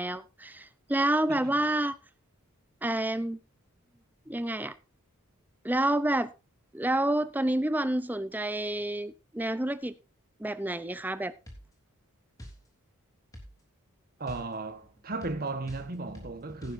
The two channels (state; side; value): normal; both; correlation 0.79